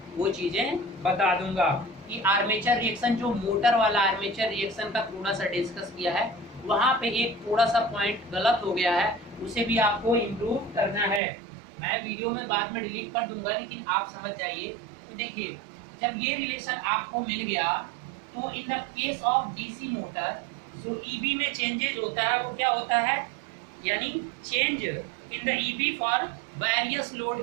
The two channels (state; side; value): drops out; left; at 11.2 s